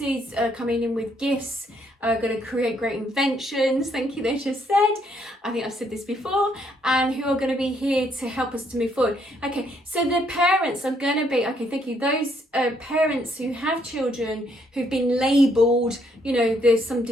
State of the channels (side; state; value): both; normal; correlation 0.71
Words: are coming in with gifts, are going to create great inventions. Thank you, they just said. I think I've said this before. And who are going to be here to help us to move forward. Okay, so the parents are going to be, okay, thank you. Those parents who have children who've been labelled, you know, there's some